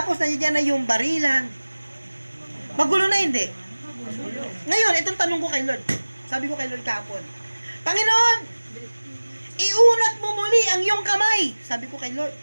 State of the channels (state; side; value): inverted; both; correlation -1.00